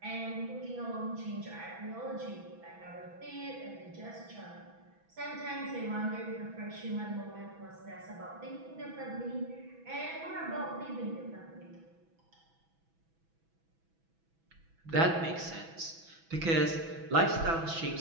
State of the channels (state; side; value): late; left; 6.1 ms